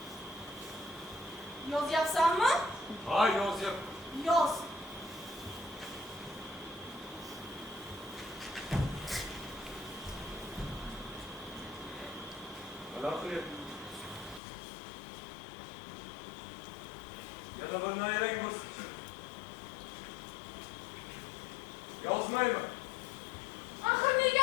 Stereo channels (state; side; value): drops out; right; at 14.4 s